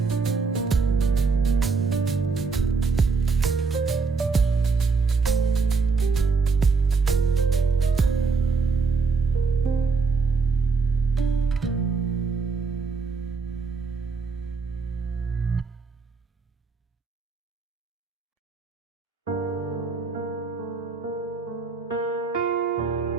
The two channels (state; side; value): quieter; left; 4.6 dB